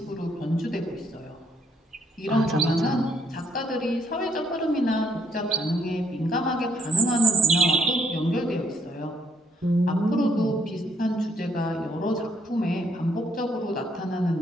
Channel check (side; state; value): both; normal; correlation 0.69